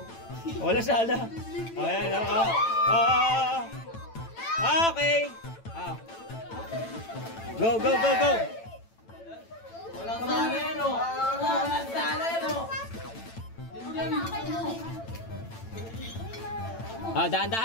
Wala sala. Ayan, oo. Okay. Go. Walang sala yan, oh.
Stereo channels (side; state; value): right; late; 8.9 ms